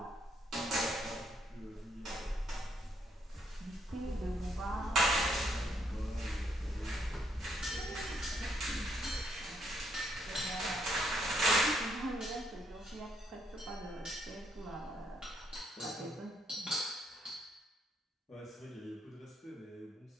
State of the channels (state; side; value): normal; both; correlation 0.73